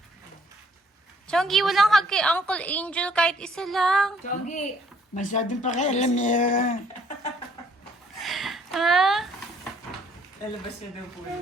Chongi, walang hug kay Uncle Angel kahit isa lang. Chongi, Masyadong pakialam niya. Ha?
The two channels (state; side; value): normal; both; correlation 0.63